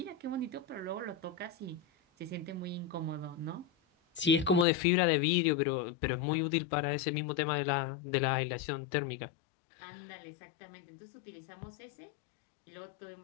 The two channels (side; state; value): right; drops out; at 4.7 s